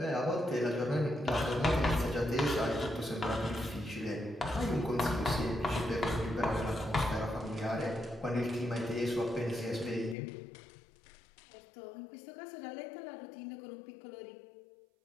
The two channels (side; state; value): right; drops out; at 10.2 s